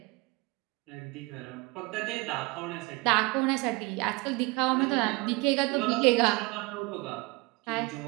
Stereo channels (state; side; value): quieter; left; 25.0 dB